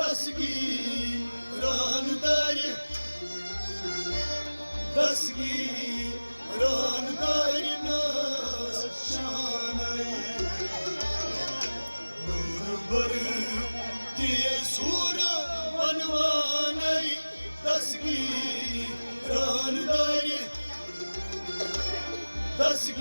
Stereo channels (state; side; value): inverted; both; correlation -1.00